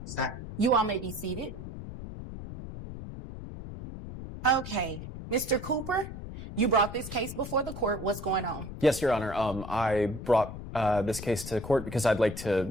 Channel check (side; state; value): left; noise; rumble, 10 dB below the sound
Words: You all may be seated. Okay, Mr. Cooper, you brought this case before the court. What's going on? Yes, Your Honor. I brought this case to court because I'd like